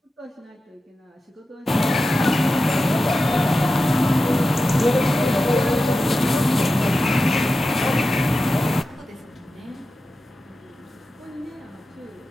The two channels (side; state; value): both; normal; correlation 0.92